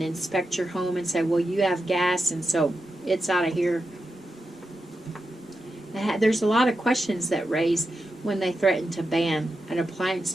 inspect your home and say, well, you have gas and so it's out of here? There's a lot of questions that raise when they threaten to ban an appliance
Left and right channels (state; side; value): normal; both; correlation 0.89